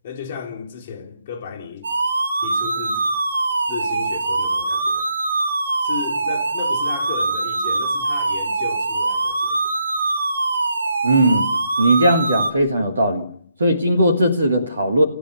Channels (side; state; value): both; inverted; correlation -0.78